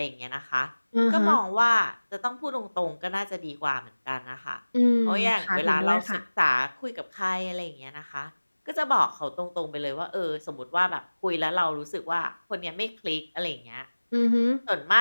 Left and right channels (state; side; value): inverted; both; correlation -1.00